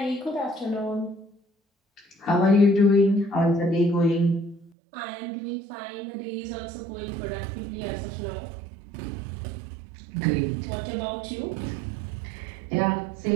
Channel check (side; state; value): left; drops out; at 4.7 s